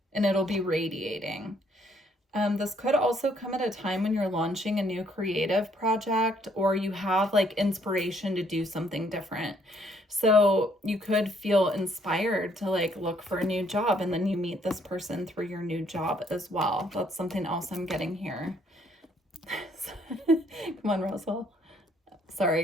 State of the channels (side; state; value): both; normal; correlation 0.67